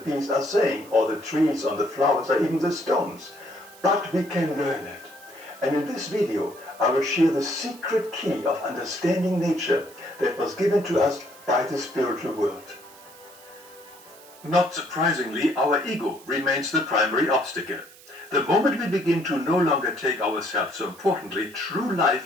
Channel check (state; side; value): noise; right; hiss, 22 dB below the sound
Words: are saying, or the trees, or the flowers, or even the stones. But we can learn it. And in this video, I will share the secret key of understanding nature that was given to us by the spiritual world. Not surprisingly, our ego remains the primary obstacle. The moment we begin to no longer take ourselves so importantly, true